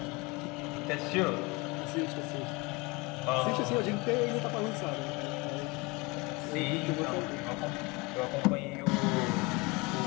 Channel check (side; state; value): right; quieter; 25.9 dB